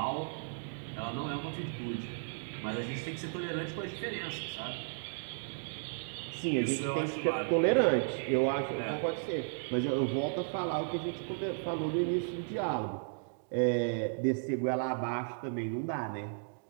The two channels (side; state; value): left; silent; digital silence